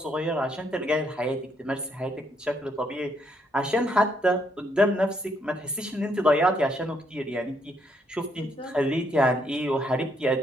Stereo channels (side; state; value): both; normal; correlation 0.73